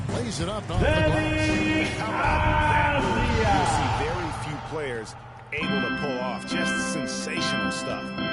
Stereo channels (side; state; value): both; identical; correlation 1.00